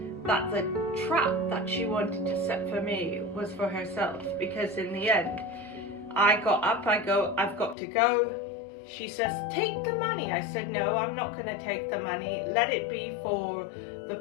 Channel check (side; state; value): right; drops out; at 7.8 s